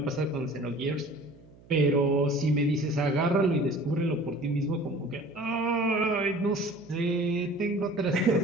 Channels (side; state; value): right; noise; hum, 25 dB below the sound